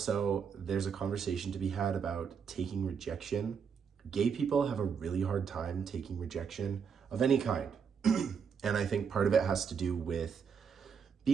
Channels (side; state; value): left; quieter; 6.7 dB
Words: there's a conversation to be had about taking rejection. Gay people have a really hard time taking rejection of any kind. And I think part of it has to do with